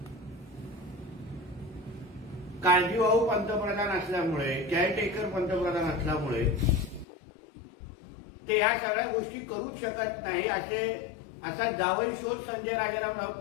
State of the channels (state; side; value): drops out; right; at 7.1 s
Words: काळजीवाहू पंतप्रधान असल्यामुळे, केअरटेकर पंतप्रधान असल्यामुळे ते या सगळ्या गोष्टी करूच शकत नाही असा जावई शोध संजय राजाराम